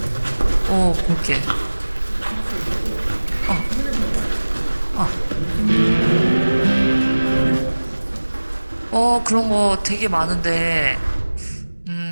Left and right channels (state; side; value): inverted; both; correlation -1.00